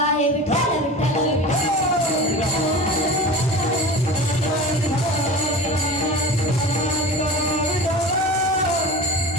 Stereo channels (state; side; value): normal; both; correlation 0.34